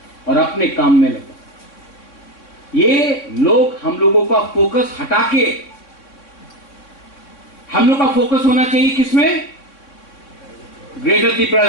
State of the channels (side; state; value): right; late; 3.6 ms